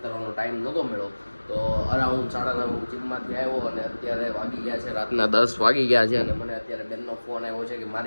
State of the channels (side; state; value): both; inverted; correlation -1.00